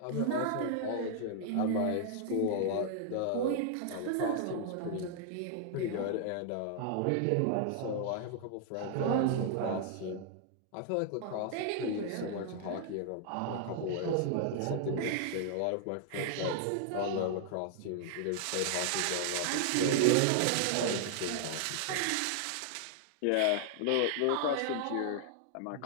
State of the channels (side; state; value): both; different; correlation 0.00